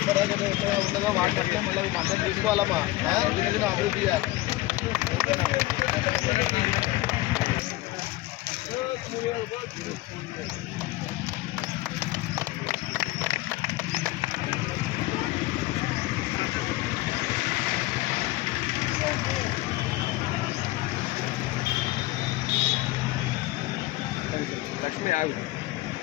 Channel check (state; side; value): quieter; right; 18.2 dB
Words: కష్టపడ్డాం ఉన్నదో వాటిని అట్లే మళ్ళీ అందరం తీసుకోవాలమ్మా దినదిన అభివృద్ధి చేయాలి లక్ష్మి ఆగు